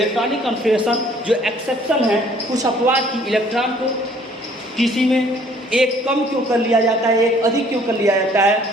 कन्फिगरेशन जो एक्सेप्शन है, कुछ अपवाद की इलेक्ट्रॉन को किसी में एक कम क्यों कर लिया जाता है, एक अधिक क्यों कर लिया जाता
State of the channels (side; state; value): both; normal; correlation 0.58